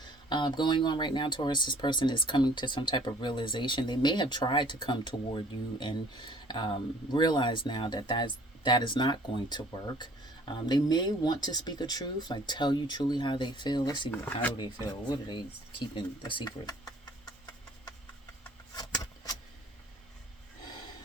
going on right now. Taurus, this person is coming to some type of realization. They may have tried to come toward you and realize now that that is not going to work. They may want to speak a truth, like tell you truly how they feel. Let's see, how do they feel? What are they keeping a secret?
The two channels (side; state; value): both; normal; correlation 0.55